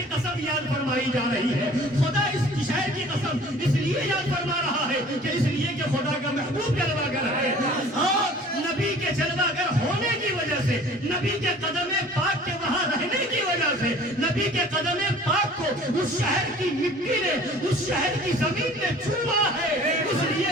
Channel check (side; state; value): both; normal; correlation 0.48